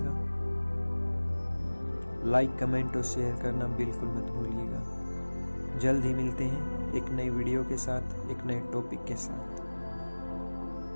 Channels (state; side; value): inverted; both; correlation -1.00